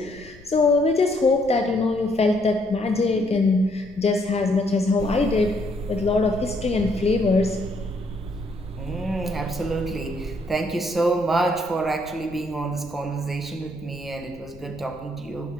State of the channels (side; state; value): left; noise; rumble, 22 dB below the sound